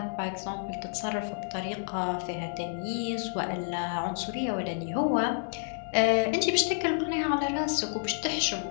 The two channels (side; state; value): right; silent; 58 dB below the other